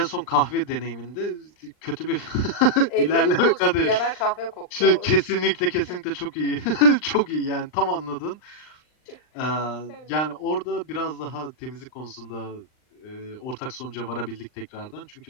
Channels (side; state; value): right; late; 39 ms